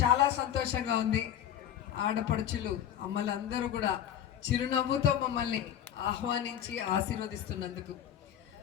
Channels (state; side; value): quieter; right; 10.3 dB